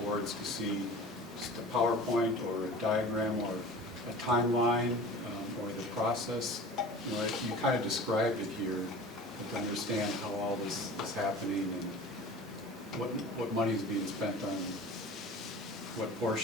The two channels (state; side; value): normal; both; correlation 0.39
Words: boards to see just a PowerPoint or a diagram or a timeline or the process. You kind of described it here, but to understand how all this is happening and what money is being spent on what